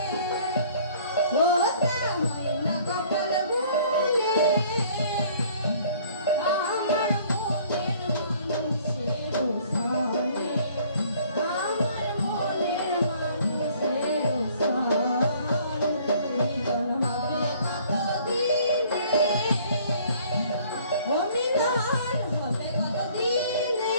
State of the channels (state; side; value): inverted; both; correlation -0.57